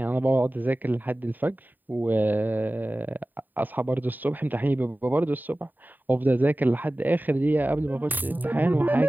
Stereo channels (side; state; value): left; late; 0.088 ms